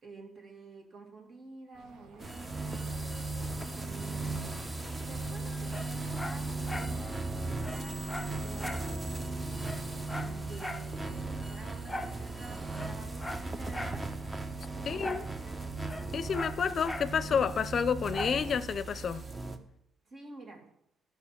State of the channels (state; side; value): normal; both; correlation 0.80